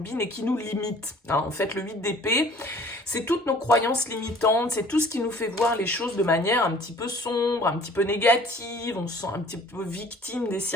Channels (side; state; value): both; normal; correlation 0.51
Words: et qui nous limite. En fait, le 8 d'épée, c'est toutes nos croyances limitantes, c'est tout ce qui nous fait voir les choses de manière un petit peu sombre, un petit peu négative, on se sent un petit peu victime des